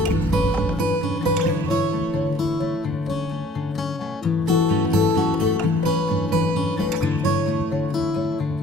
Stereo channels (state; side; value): normal; both; correlation 0.56